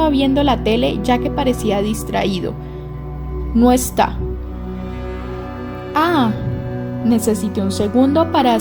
viendo la tele ya que parecía distraído. No está. Necesité un segundo para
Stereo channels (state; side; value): identical; both; correlation 1.00